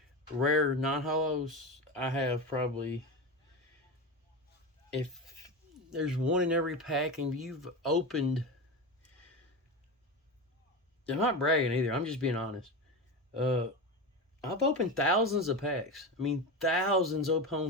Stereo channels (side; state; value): both; normal; correlation 0.21